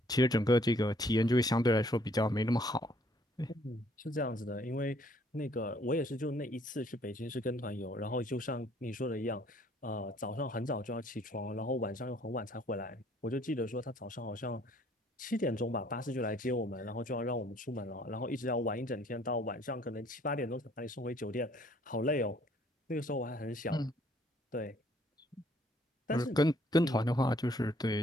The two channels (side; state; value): both; normal; correlation 0.62